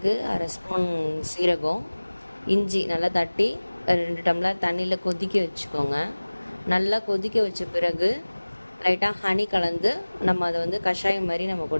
அரை ஸ்பூன் சீரகம், இஞ்சி நல்லா தட்டி 2 டம்ளர் தண்ணியில் கொதிக்க வச்சுக்கோங்க. நல்லா கொதிக்க வச்ச பிறகு லைட்டாக ஹனி கலந்து நம்ம அதை வந்து கஷாயம் மாதிரி நம்ம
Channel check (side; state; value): both; inverted; correlation -1.00